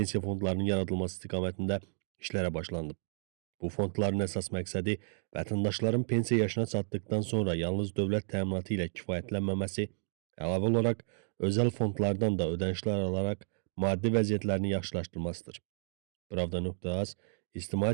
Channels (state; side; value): silent; left; digital silence